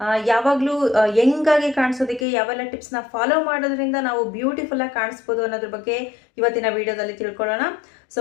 ಯಾವಾಗಲೂ ಯಂಗಾಗಿ ಕಾಣಿಸೋದಕ್ಕೆ ಯಾವೆಲ್ಲ ಟಿಪ್ಸ್ನ ಫಾಲೋ ಮಾಡೋದ್ರಿಂದ ನಾವು ಬ್ಯೂಟಿಫುಲ್ ಆಗಿ ಕಾಣಿಸ್ಬೋದು ಅನ್ನೋದ್ರ ಬಗ್ಗೆ ಇವತ್ತಿನ ವಿಡಿಯೋದಲ್ಲಿ ತಿಳ್ಕೊಳ್ಳೋಣ. ಸೊ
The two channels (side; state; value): right; drops out; at 2.2 s